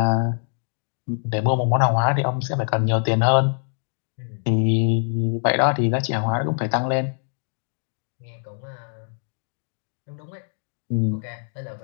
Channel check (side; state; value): right; silent; digital silence